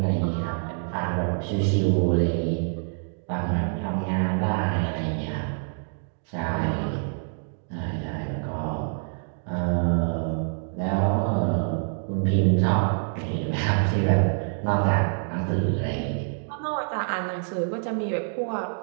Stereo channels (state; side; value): silent; left; 60 dB below the other